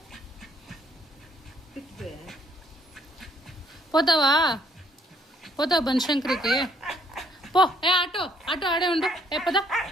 పోతావా? పోతావు బనశంకరికి? పో. ఏ ఆటో ఆటో ఆడే ఉండు. ఏ పద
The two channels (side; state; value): both; normal; correlation 0.66